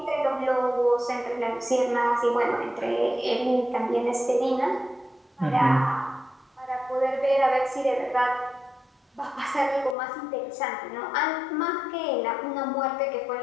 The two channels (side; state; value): right; drops out; at 10.0 s